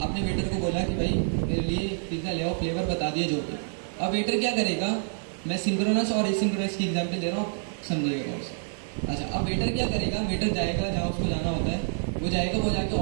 आपने वेटर को बोला कि भाई मेरे लिए पिज़्ज़ा ले आओ, फ्लेवर बता दिए जो भी। अब वेटर क्या करेगा? मैं सिंक्रोनस और एसिंक्रोनस की एग्जांपल दे रहा हूँ, समझिएगा उसे। अच्छा, अब वेटर क्या करेगा, वेटर जाएगा जहाँ उसको जाना होता है, वो जाएगा, वो जाके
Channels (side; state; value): left; silent; digital silence